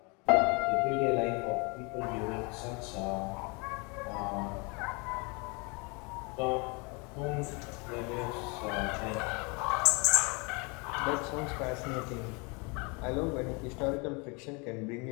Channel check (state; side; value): quieter; right; 30.3 dB